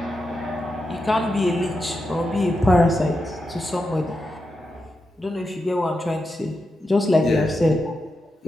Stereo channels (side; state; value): both; normal; correlation 0.87